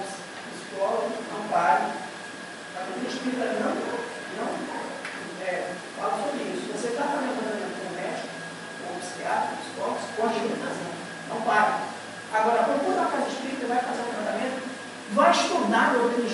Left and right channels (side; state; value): both; identical; correlation 1.00